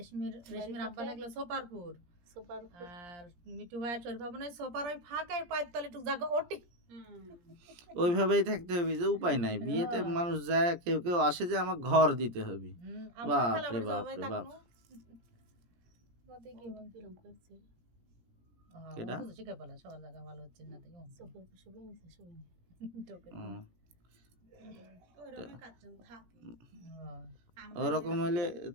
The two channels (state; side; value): late; left; 17 ms